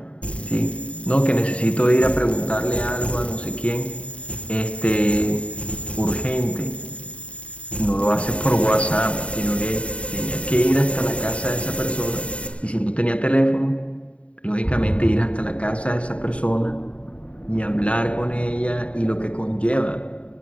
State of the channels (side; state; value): right; late; 0.063 ms